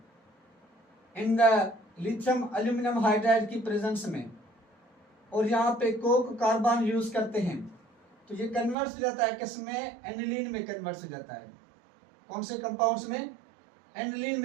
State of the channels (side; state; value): left; drops out; at 8.8 s